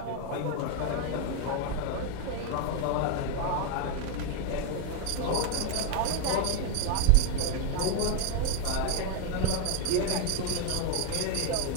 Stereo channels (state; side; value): different; both; correlation 0.01